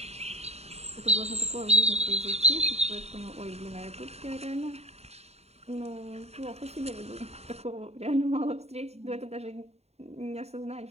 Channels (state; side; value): late; left; 0.31 ms